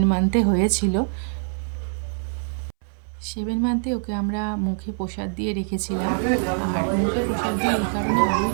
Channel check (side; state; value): left; silent; 63 dB below the other